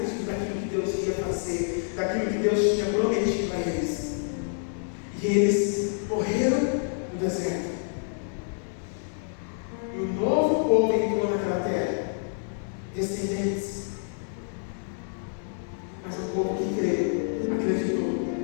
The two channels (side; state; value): right; silent; digital silence